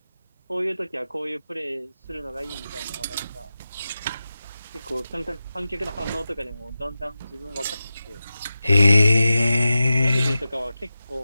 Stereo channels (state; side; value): inverted; both; correlation -0.94